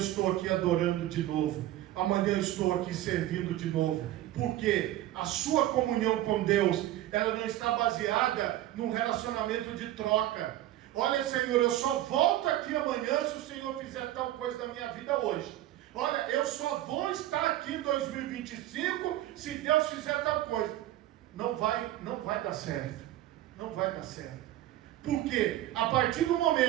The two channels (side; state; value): left; quieter; 14.2 dB